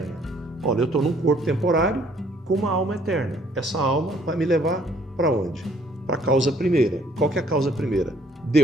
Olha, eu estou num corpo temporário com uma alma eterna. Essa alma vai me levar para onde? Para a causa primeira. Qual que é a causa primeira?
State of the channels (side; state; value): both; normal; correlation 0.62